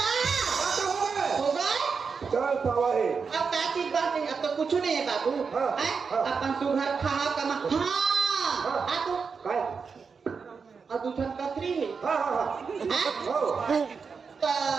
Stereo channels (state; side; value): quieter; left; 5.5 dB